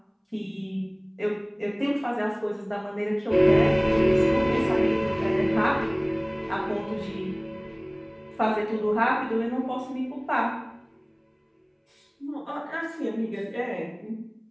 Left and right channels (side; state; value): both; identical; correlation 1.00